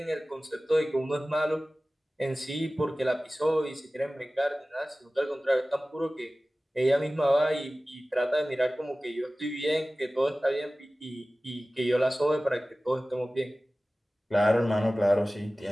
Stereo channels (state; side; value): normal; both; correlation 0.97